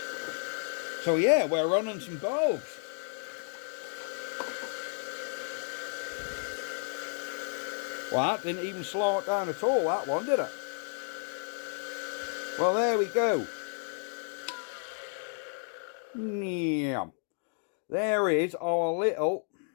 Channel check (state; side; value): silent; right; 56 dB below the other